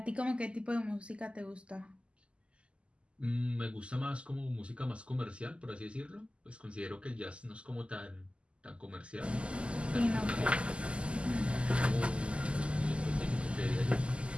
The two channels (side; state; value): left; late; 0.054 ms